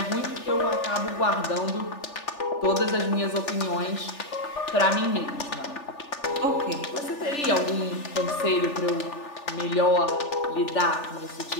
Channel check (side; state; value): right; late; 3.4 ms